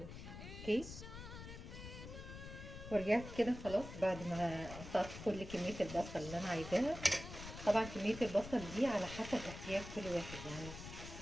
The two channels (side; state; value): left; noise; rumble, 11 dB below the sound